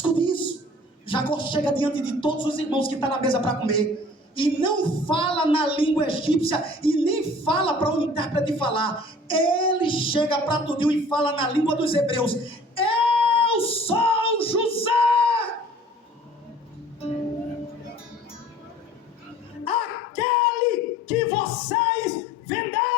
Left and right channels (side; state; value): both; normal; correlation 0.49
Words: isso. Jacó chega diante de todos os irmãos que estão na mesa para comer, e não fala na língua egípcia, e nem fala para o intérprete falar. Ele chega para tudinho e fala na língua dos hebreus: eu sou José, aquele que vocês